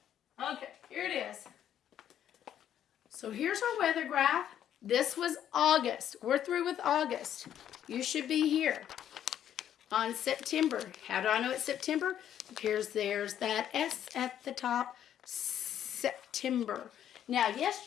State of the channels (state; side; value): quieter; right; 10.3 dB